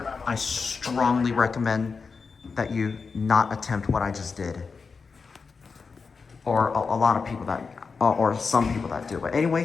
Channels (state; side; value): quieter; right; 5.0 dB